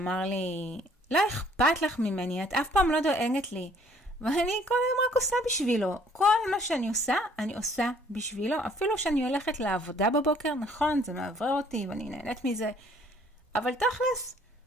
לי, לא אכפת לך ממני, את אף פעם לא דואגת לי. ואני כל היום רק עושה בשבילו. כל מה שאני עושה, אני עושה בשבילו. אפילו שאני הולכת לעבודה בבוקר, נכון, זה מעבר אותי ואני נהנית מזה. אבל תכלס,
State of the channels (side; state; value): both; normal; correlation 0.60